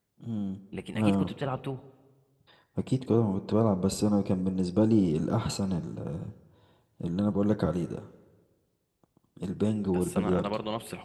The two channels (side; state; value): both; identical; correlation 1.00